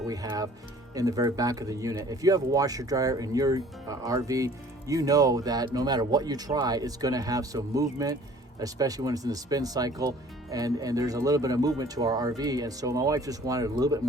we have in the very back of the unit. If you have a washer dryer in your RV, you know that no matter what you try, it's going to have some movement, especially when it's in the spin cycle, and there's a little bit of movement to our RV. And so my wife just wanted a little bit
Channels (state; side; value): normal; both; correlation 0.52